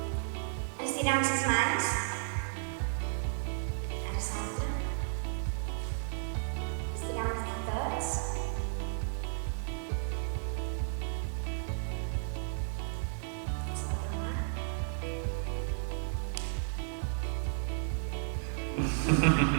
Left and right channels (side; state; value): left; silent; digital silence